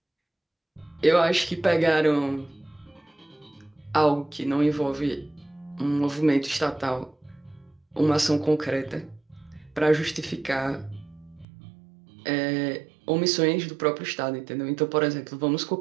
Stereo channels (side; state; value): left; drops out; at 11.5 s